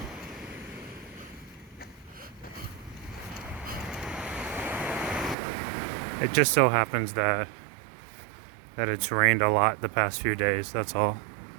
it just so happens that that it's rained a lot the past few days, that's all.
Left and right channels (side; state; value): left; drops out; at 5.4 s